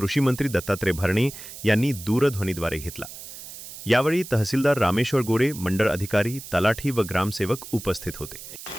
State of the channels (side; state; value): right; noise; hiss, 13 dB below the sound